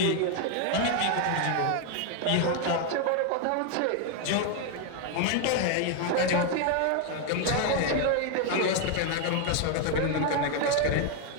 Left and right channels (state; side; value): different; both; correlation 0.01